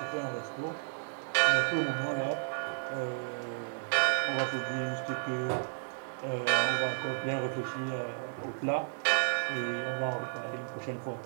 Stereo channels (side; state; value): left; silent; digital silence